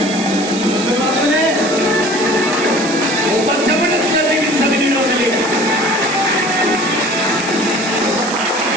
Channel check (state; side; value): noise; right; hiss, 10 dB below the sound